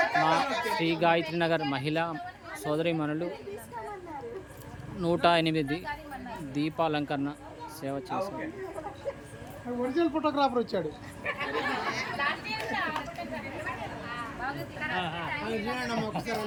మా శ్రీ గాయత్రి నగర్ మహిళా సోదరీమణులు 108 దీపాలంకరణ సేవ చేశారు. ఒరిజినల్ ఫోటోగ్రాఫర్ వచ్చాడు.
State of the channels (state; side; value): identical; both; correlation 1.00